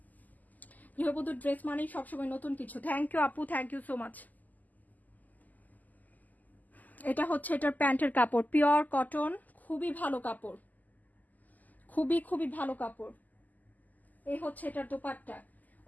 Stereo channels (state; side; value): late; right; 0.081 ms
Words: গৃহবধূর ড্রেস মানেই সবসময় নতুন কিছু। থ্যাংক ইউ আপু, থ্যাংক ইউ সো মাচ। এটা হচ্ছে এটার প্যান্টের কাপড়, পিওর কটন, খুবই ভালো কাপড়, খুবই ভালো কাপড়। এই হচ্ছে এটার দোপাট্টা,